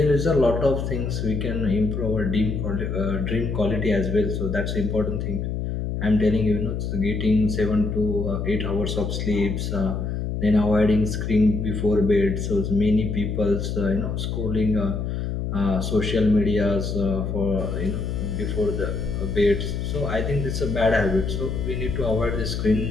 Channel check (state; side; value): noise; left; hum, 3 dB below the sound